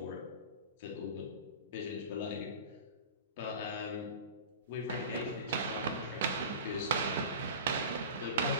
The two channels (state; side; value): inverted; both; correlation -0.34